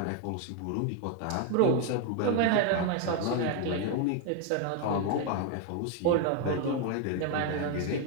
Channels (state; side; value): different; both; correlation 0.01